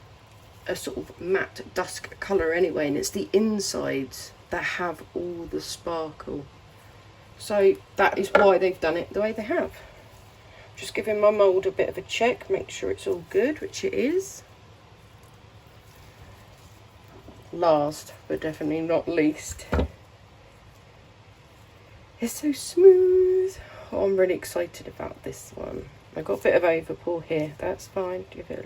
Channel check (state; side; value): identical; both; correlation 1.00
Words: a sort of matte dusk colour anyway, and it's the insides that have all the sparkle. So that is why they've done it the way they have. Just giving my mould a bit of a check, make sure it's all good, which it is. Last but definitely not least, it's so smooth. Oh, I'm really excited about this one. I got a bit of overpour here, that's fine. Give